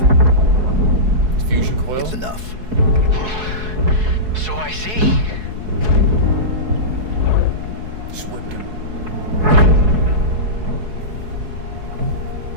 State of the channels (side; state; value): left; late; 4.7 ms